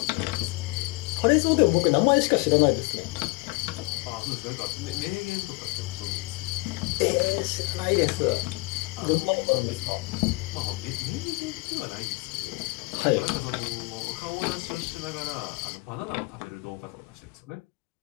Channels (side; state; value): right; quieter; 24.8 dB